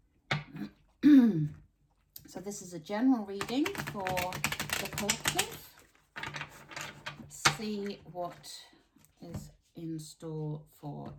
So this is a general reading for the collective. Let's see what is in store for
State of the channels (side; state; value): both; identical; correlation 1.00